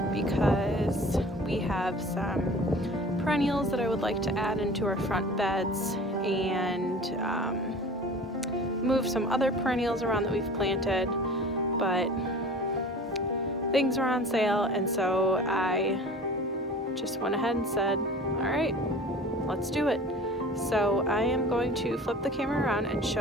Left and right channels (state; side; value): normal; both; correlation 0.42